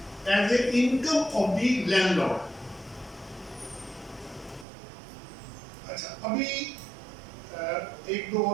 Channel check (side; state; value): left; drops out; at 4.7 s